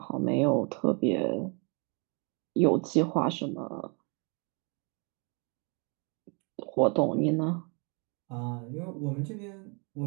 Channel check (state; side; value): quieter; left; 34.0 dB